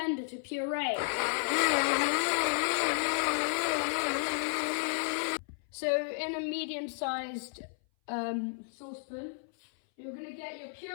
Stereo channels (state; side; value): silent; right; 56 dB below the other